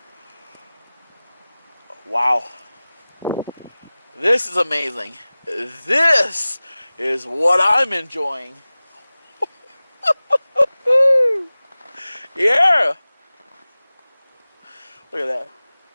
Wow. This is amazing. This is what I'm enjoying. Yeah. Look at that.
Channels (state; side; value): inverted; both; correlation -0.98